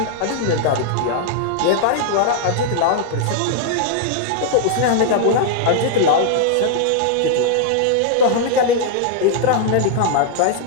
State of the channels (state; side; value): different; both; correlation 0.00